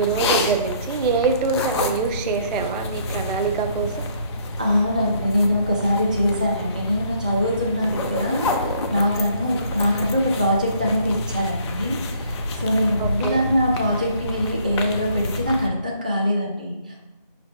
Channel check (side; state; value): both; inverted; correlation -0.62